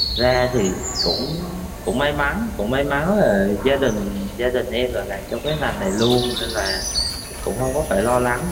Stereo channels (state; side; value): identical; both; correlation 1.00